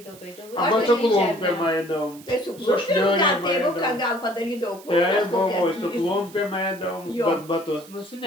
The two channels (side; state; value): right; noise; hiss, 21 dB below the sound